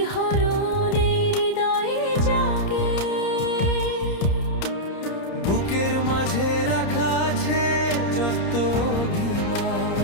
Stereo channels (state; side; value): late; right; 30 ms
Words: এই হৃদয়ে জাগে। বুকের মাঝে রাখা আছে যত অভিমান,